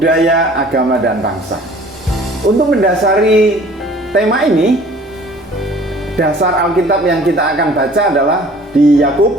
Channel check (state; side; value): normal; both; correlation 0.50